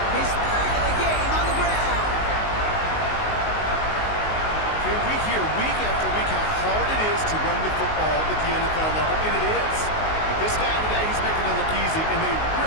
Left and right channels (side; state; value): right; late; 19 ms